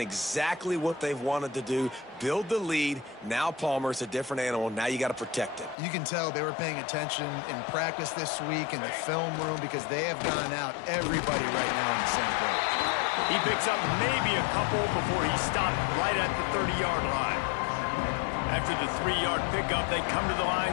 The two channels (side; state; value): right; drops out; at 5.8 s